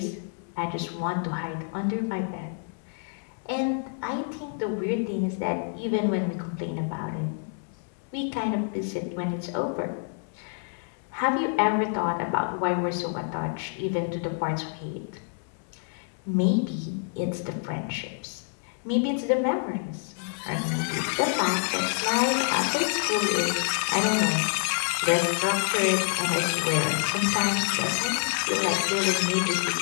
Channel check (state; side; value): silent; right; 60 dB below the other